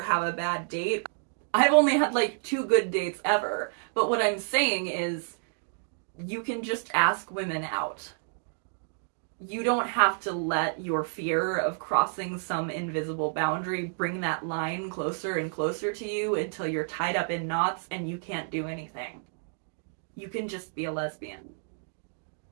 have a bad date. I've only had like 2 good dates ever. But what I'm saying is, you can just ask women out. You don't have to let your fear of crossing some invisible boundary bring that line closer and closer to you until you're tied up in knots and you can't do anything. You can just be a lesbian.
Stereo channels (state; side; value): silent; left; digital silence